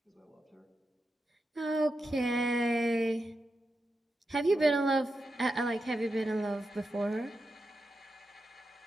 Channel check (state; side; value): normal; both; correlation 0.88